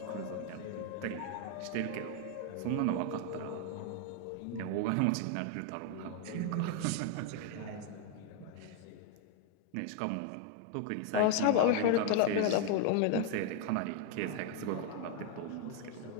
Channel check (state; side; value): different; both; correlation 0.00